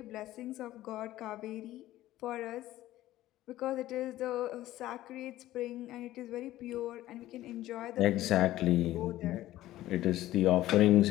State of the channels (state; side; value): quieter; right; 15.0 dB